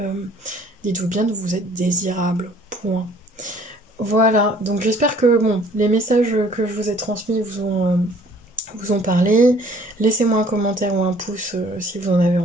dites-vous bien que vous êtes désirable. Point. Voilà, donc j'espère que bon, les messages que je vous ai transmis vous ont parlé. Laissez-moi un commentaire ou un pouce si vous en avez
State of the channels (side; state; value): both; normal; correlation 0.56